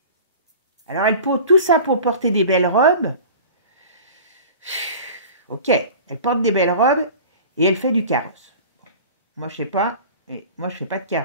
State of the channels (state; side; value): inverted; both; correlation -0.39